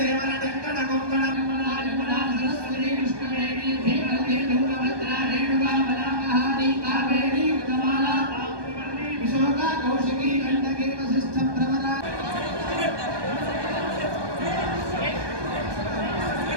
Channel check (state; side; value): late; left; 1.2 ms